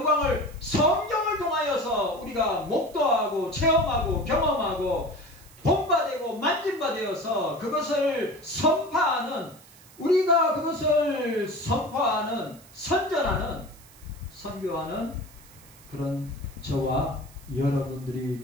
성경을 통하여서 우리가 목도하고 체험하고 경험하고 본바되고 만진바되어서 그것을 선포하는, 우리가 그것을 선포하는, 선전하는, 선교하는 그런 저와 여러분들이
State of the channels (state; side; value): noise; right; hiss, 23 dB below the sound